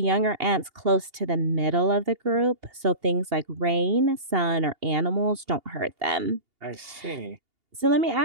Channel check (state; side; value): late; left; 2.8 ms